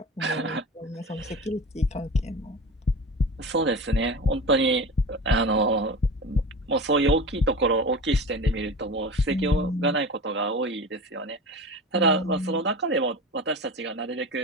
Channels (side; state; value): both; normal; correlation 0.32